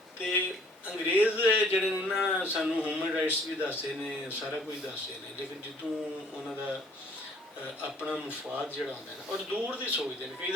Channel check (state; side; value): normal; both; correlation 0.58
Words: ਤੇ ਅੰਗਰੇਜ਼ ਜਿਹੜੇ ਨੇ ਨਾ ਸਾਨੂੰ ਹਿਊਮਨ ਰਾਈਟਸ ਵੀ ਦੱਸਦੇ ਨੇ, ਸਾਰਾ ਕੁਝ ਦੱਸਦੇ ਨੇ, ਲੇਕਿਨ ਜਦੋਂ ਉਹਨਾਂ ਦਾ ਆਪਣਾ ਮੁਫਾਦ ਜਿਹੜਾ ਹੁੰਦਾ ਨਾ, ਔਰ ਦੂਰ ਦੀ ਸੋਚਦੇ ਨੇ। ਕਈ